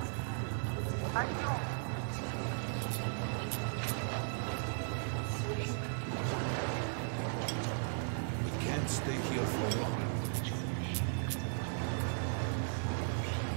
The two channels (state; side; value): silent; left; digital silence